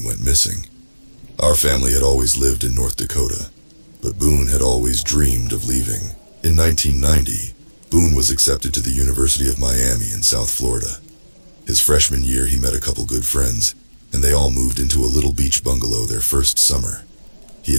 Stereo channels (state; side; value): inverted; both; correlation -1.00